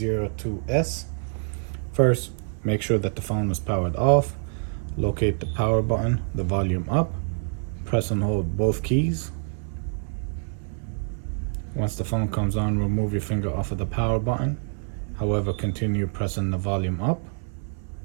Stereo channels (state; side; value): silent; left; 61 dB below the other